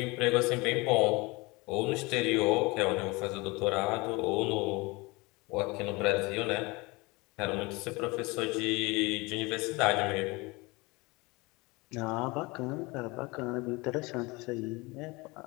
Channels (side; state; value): right; quieter; 24.7 dB